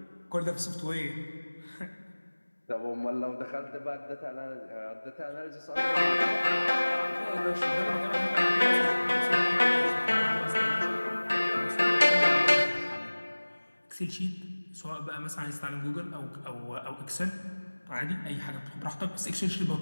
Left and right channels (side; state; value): both; inverted; correlation -1.00